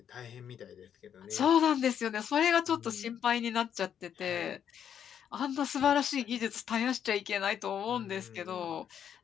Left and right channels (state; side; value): quieter; right; 8.8 dB